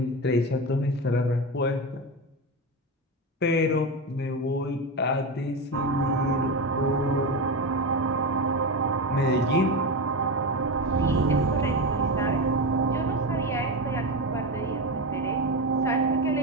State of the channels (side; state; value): both; normal; correlation 0.17